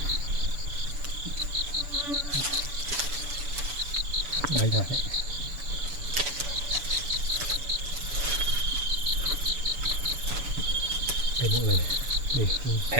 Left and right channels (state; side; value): late; left; 7.0 ms